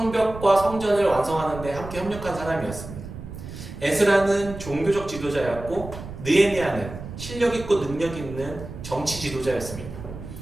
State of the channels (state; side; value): noise; right; rumble, 11 dB below the sound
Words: 성전을 완성하는 데 함께 협력한 사람이었습니다. 에스라는 종교적 지도자였고 느헤미야는 실력 있고 능력 있는 정치 지도자였습니다.